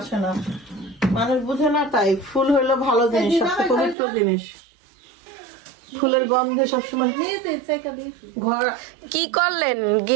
না, মানুষ বুঝে না। তাই ফুল হইলো ভালো জিনিস, সবচেয়ে পবিত্র জিনিস। ফুলের গন্ধে সবসময় ঘর। কি করলেন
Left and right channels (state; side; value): drops out; left; at 4.0 s